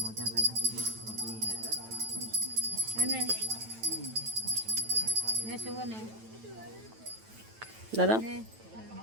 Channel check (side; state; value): left; late; 9.1 ms